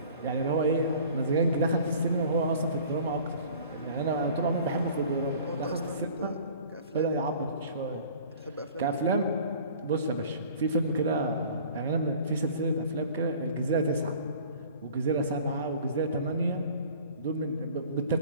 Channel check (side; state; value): both; inverted; correlation -0.47